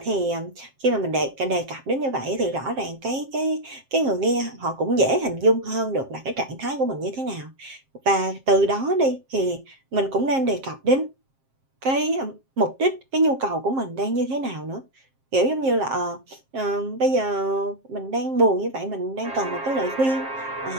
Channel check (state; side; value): late; left; 7.5 ms